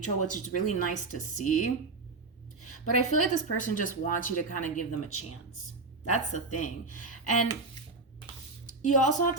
which is really nice to see. But I feel like this person just wants you to kind of give them a chance. That's the thing. And you also have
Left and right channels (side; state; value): left; quieter; 3.7 dB